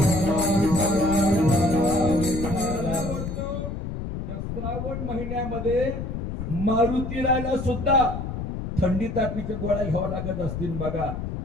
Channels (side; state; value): left; noise; rumble, 5 dB below the sound